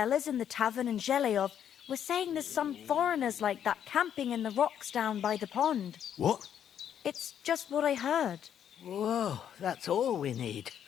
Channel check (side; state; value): right; quieter; 9.3 dB